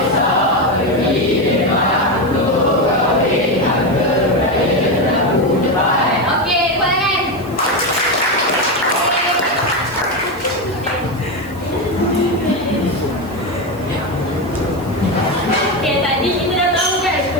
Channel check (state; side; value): noise; left; hiss, 24 dB below the sound